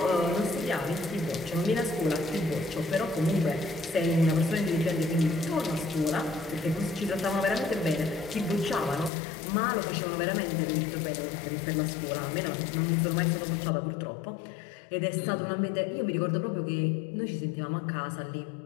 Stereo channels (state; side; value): drops out; right; at 9.1 s